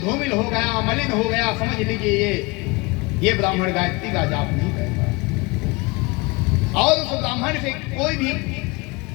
धूमिल हो गया, मलिन हो गया, समझ लीजिए ये ब्राह्मण गायत्री का जाप नहीं करता। और उस ब्राह्मण से कोई भी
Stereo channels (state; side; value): quieter; right; 25.1 dB